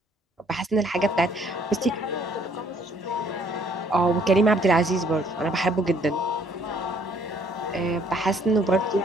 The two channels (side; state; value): both; normal; correlation 0.63